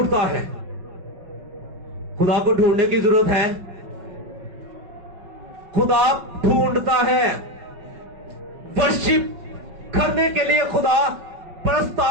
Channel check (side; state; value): left; late; 5.4 ms